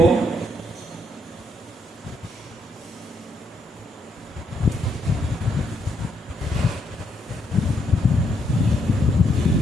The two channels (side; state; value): both; normal; correlation 0.75